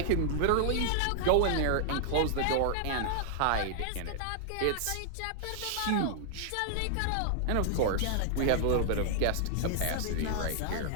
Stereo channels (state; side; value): different; both; correlation -0.01